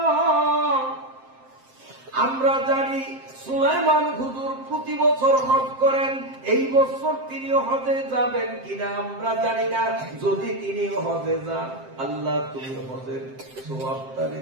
আমরা জানি সুলাইমান হুজুর প্রতি বছর হজ করেন, এই বছর তিনি হজে যাবেন কিনা আমরা জানি না। যদি তিনি হজে যান, আল্লাহ তুমি হজের সওয়াবটারে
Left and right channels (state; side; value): late; left; 7.6 ms